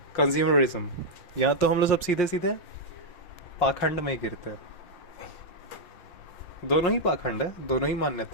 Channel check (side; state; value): right; late; 5.6 ms